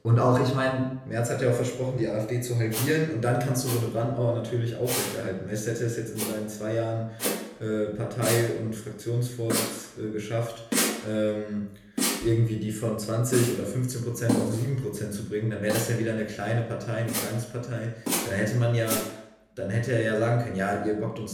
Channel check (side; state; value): both; identical; correlation 1.00